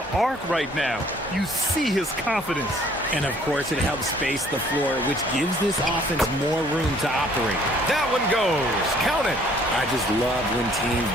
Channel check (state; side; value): normal; both; correlation 0.59